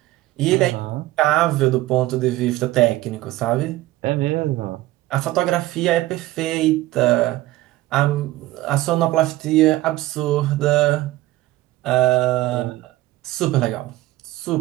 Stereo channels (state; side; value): quieter; left; 17.0 dB